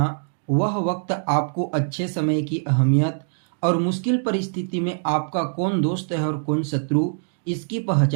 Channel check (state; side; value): silent; left; 63 dB below the other